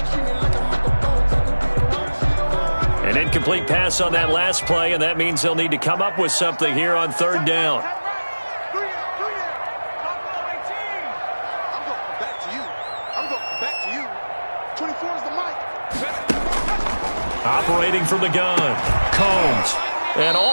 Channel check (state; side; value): inverted; both; correlation -1.00